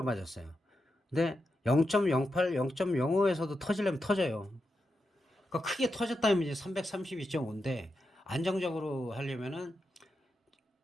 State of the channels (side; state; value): both; normal; correlation 0.87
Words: 맞았어요. 근데 0.08, 0.05에서도 터지려면 터져요. 그러니까 크게 터졌다면 이제 332.5인데 안정적으로 하려면은